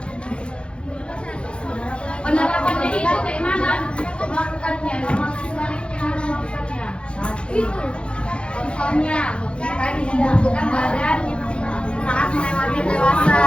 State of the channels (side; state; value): right; late; 0.057 ms